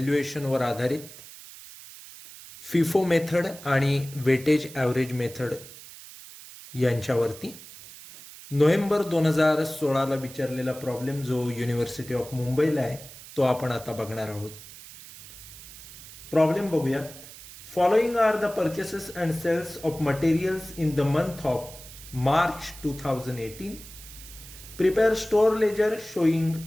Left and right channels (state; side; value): noise; right; hiss, 16 dB below the sound